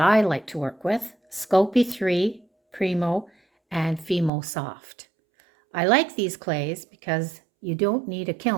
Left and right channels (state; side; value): drops out; left; at 4.3 s